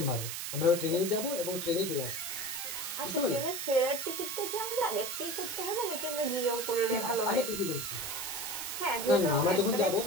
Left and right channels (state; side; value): noise; right; hiss, 5 dB below the sound